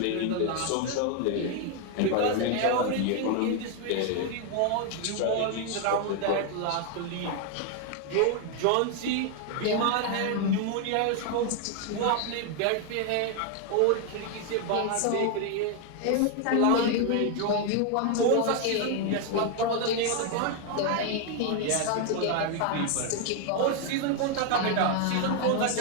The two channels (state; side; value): different; both; correlation 0.01